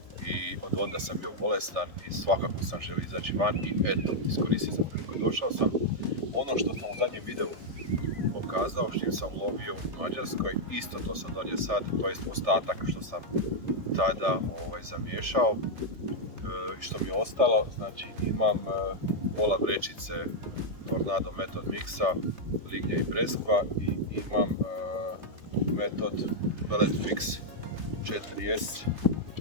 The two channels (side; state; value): left; late; 3.3 ms